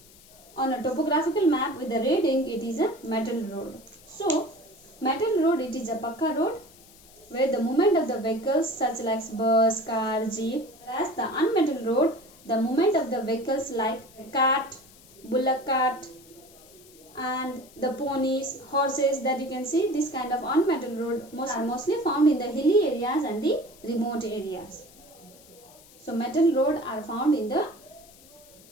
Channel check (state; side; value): noise; left; hiss, 24 dB below the sound